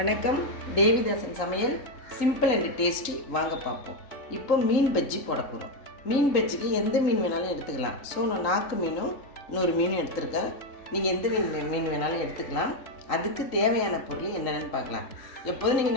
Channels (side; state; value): right; late; 3.8 ms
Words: தேவிதாசன் சமையல் simple and tasty. வாங்க பார்ப்போம். இப்போ மீன் பஜ்ஜி போட போகிறோம். மீன் பஜ்ஜிக்கு எந்த மீன் வேணாலும் எடுத்துக்கலாம். ஸோ நான் நாக்கு மீனும் இன்னொரு மீனும் எடுத்துருக்கேன். நீங்கள் எந்த மீன் வேணாலும் எடுத்துக்கலாம். அதுக்கு தேவையான பொருள் என்னென்னு பார்க்கலாம். எப்போதும்